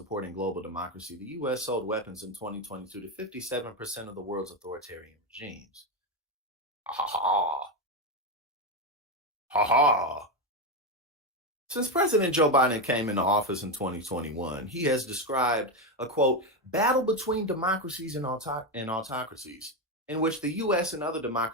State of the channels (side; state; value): both; normal; correlation 0.10